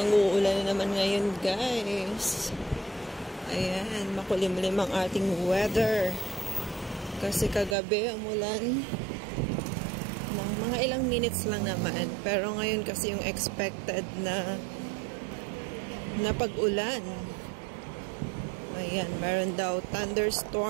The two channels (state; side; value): drops out; left; at 7.8 s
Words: uulan na naman ngayon, guys. Ayan, makulimlim ang ating weather. Kasi kagabi umulan ng mga ilang minutes lang naman. Pero ngayon kasi yung expected na pag-ulan. Ayan, meron daw